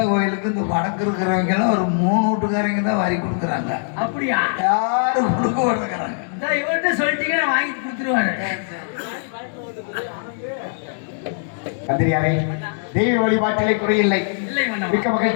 கோயிலுக்கு இந்த வடக்கு இருக்கிறவங்க எல்லாம் ஒரு 3 வீட்டுக்காரங்க தான் வரி கொடுக்குறாங்க. அப்படியா? யாரும் கொடுக்க மாட்டேங்கிறாங்க. இவர்கிட்ட சொல்லிட்டீங்கன்னா வாங்கி கொடுத்துருவாரு. மந்திரியாரே, தெய்வ வழிபாட்டிலே குறையில்லை. மிக்க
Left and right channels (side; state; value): right; silent; digital silence